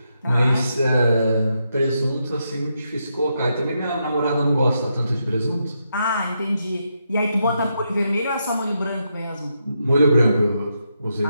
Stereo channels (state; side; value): inverted; both; correlation -0.82